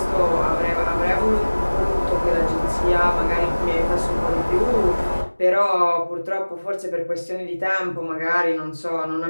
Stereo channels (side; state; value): both; inverted; correlation -1.00